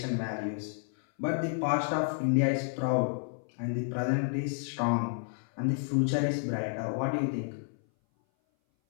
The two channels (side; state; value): right; silent; 57 dB below the other